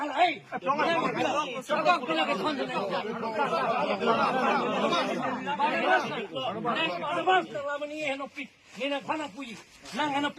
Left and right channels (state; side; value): identical; both; correlation 1.00